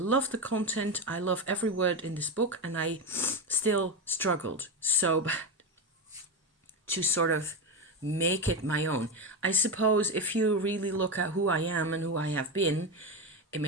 the content. I love every word in this book. And I still struggled so bad to sort of make it my own. I suppose if you really look at who I am and who I have been, it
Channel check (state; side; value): normal; both; correlation 0.14